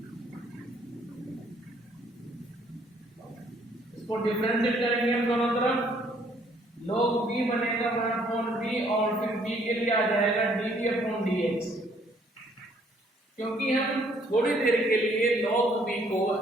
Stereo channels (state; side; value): normal; both; correlation 0.64